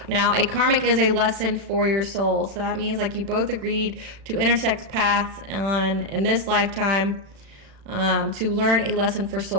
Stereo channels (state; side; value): late; left; 36 ms